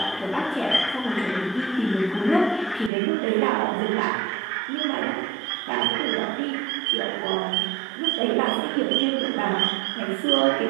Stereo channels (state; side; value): drops out; left; at 2.9 s